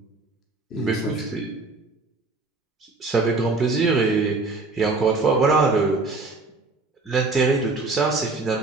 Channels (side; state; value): left; quieter; 3.5 dB